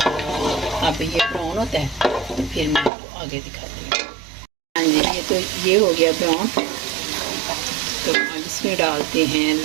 अब ये ब्राउन होता है तो फिर मैं आपको आगे दिखाती हूँ। हाँ जी, ये तो ये हो गया ब्राउन। तो अब इसमें डालते हैं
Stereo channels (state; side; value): drops out; left; at 2.9 s